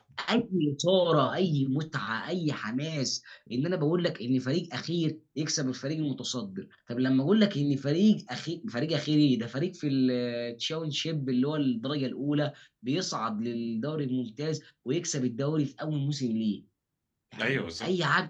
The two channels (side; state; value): both; identical; correlation 1.00